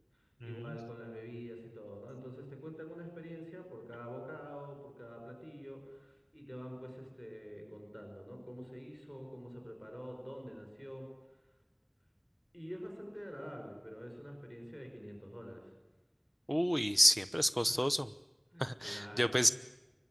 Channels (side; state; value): both; identical; correlation 1.00